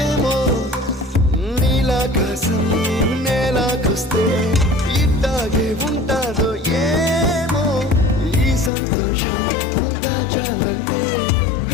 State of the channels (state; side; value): drops out; right; at 8.7 s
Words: నీలాకాశం నేలాకొస్తే ఇట్టాగే ఉంటాదో ఏమో ఈ సంతోషం దాచాలంటే